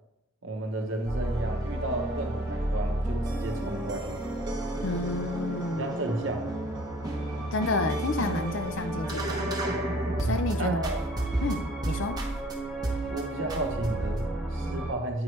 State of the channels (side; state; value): both; normal; correlation 0.54